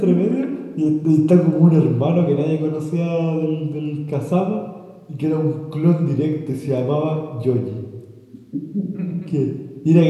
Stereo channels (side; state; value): both; identical; correlation 1.00